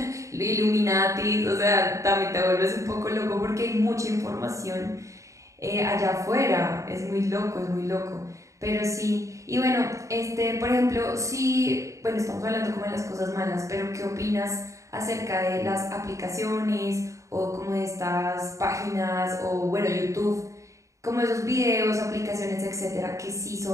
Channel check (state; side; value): late; left; 0.15 ms